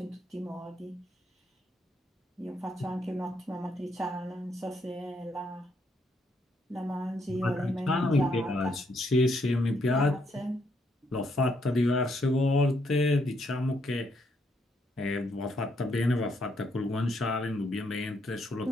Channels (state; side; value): normal; both; correlation 0.74